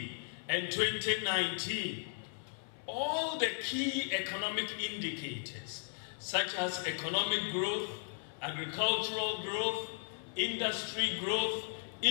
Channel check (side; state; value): right; silent; 54 dB below the other